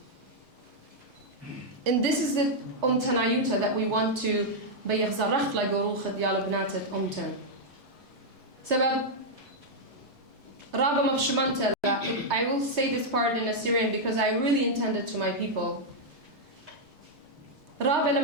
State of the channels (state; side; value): normal; both; correlation -0.03